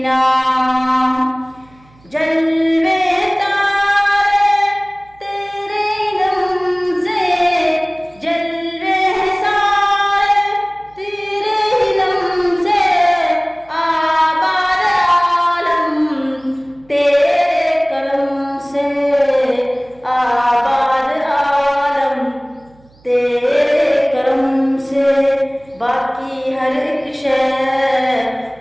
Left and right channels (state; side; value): noise; right; hum, 29 dB below the sound